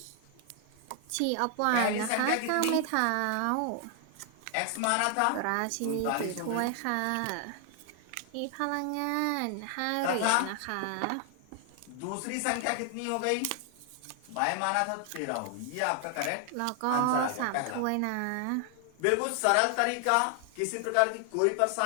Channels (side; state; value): both; different; correlation 0.00